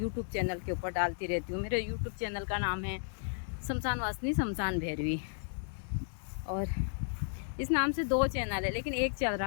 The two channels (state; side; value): silent; right; digital silence